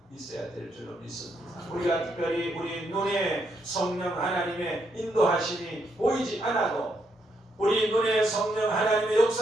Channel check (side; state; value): both; normal; correlation 0.77